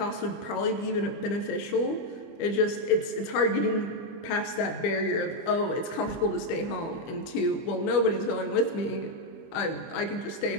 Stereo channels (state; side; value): late; right; 25 ms